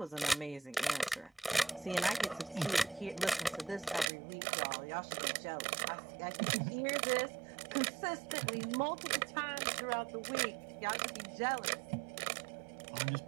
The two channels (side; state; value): left; drops out; at 4.0 s